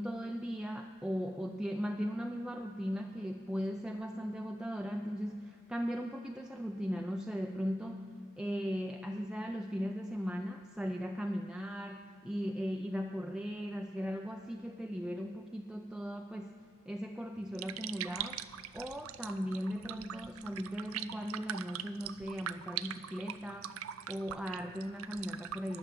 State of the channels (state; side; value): normal; both; correlation 0.87